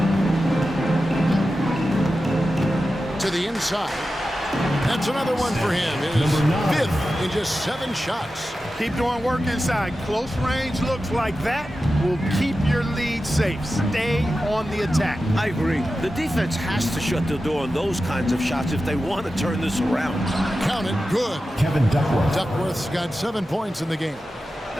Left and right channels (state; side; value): normal; both; correlation 0.92